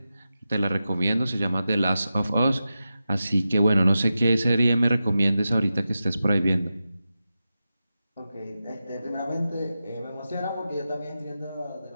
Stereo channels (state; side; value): inverted; both; correlation -0.91